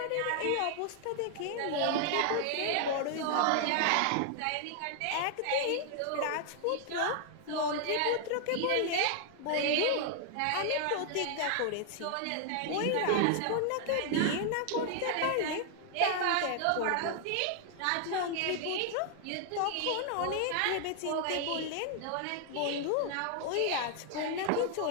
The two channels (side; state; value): both; different; correlation 0.00